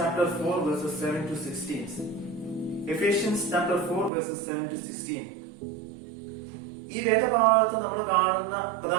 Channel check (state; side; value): drops out; left; at 4.1 s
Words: 4 verses 7 to 16. Ephesians chapter 4 verses 7 to 16. ഈ വേദഭാഗത്ത് നമ്മൾ കാണുന്ന